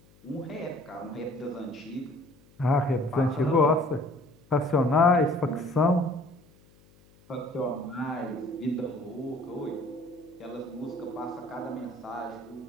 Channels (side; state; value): left; noise; hum, 28 dB below the sound